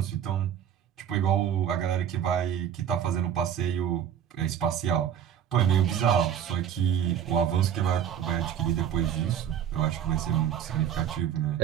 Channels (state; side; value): quieter; left; 9.3 dB